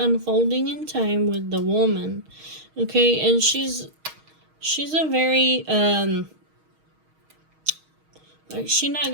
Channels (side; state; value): left; late; 6.4 ms